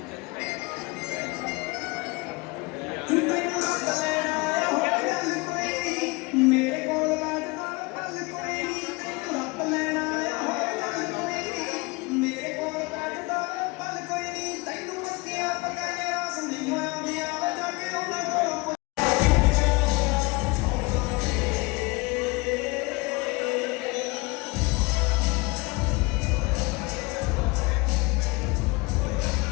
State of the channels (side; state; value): right; quieter; 25.6 dB